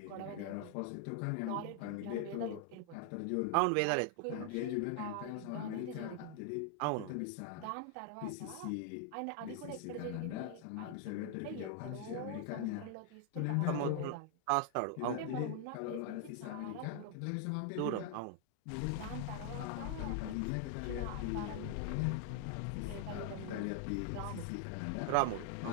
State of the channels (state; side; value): different; both; correlation 0.00